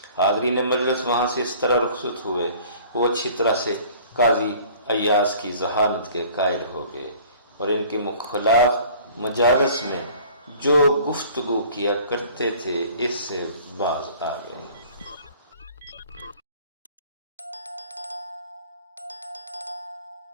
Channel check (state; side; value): inverted; both; correlation -0.50